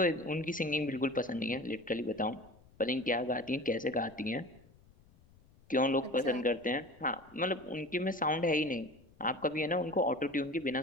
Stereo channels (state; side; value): noise; left; rumble, 27 dB below the sound